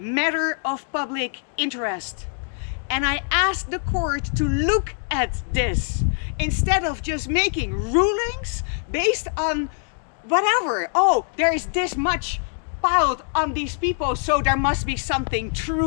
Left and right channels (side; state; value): right; silent; 61 dB below the other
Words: of public interest. And I ask the court to look at this instead of just making rulings based on whatever. Oh, there is this much piled on these people, so there must be something